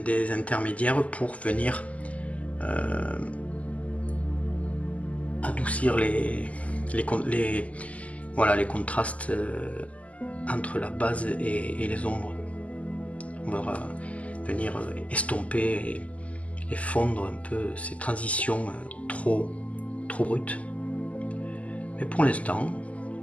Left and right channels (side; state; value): right; late; 0.069 ms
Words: intermédiaires pour venir adoucir les contrastes entre la base et les ombres. On va venir estomper et fondre un peu ces transitions trop brutes. Mais pour l'instant,